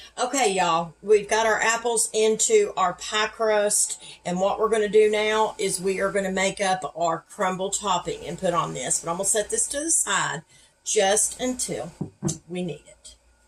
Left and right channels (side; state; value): both; identical; correlation 1.00